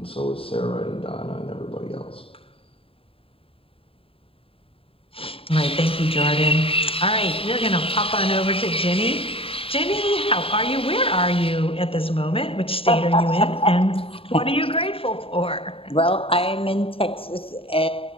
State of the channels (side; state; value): right; late; 0.27 ms